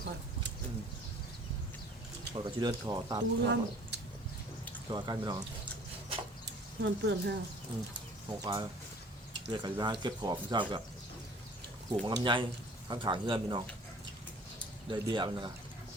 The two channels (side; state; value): both; normal; correlation 0.51